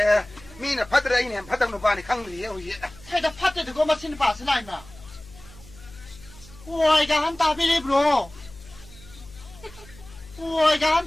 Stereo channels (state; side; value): noise; left; hum, 20 dB below the sound